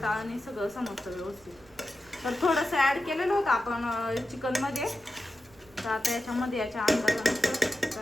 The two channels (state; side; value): noise; right; rumble, 26 dB below the sound